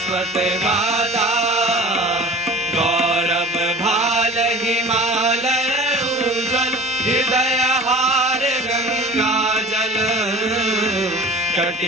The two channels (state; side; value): noise; right; hum, 28 dB below the sound